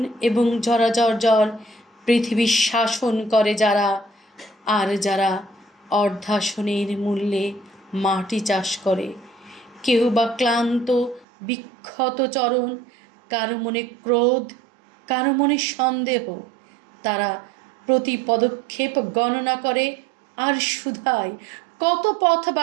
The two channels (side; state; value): left; drops out; at 11.2 s